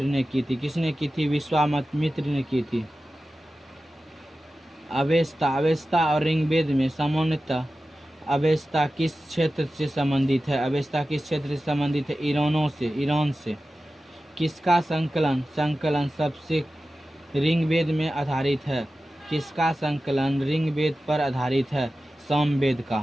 ने की थी। किसने की थी? विश्वामित्र ने की थी। अवेस्ता और ऋग्वेद में सामान्यतः अवेस्ता किस क्षेत्र से संबंधित है? अवेस्ता किस क्षेत्र से संबंधित है? ईरान से। किसका संकलन सबसे ऋग्वेद में आधारित है? किसका संकलन ऋग्वेद पर आधारित है? सामवेद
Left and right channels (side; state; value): both; normal; correlation 0.94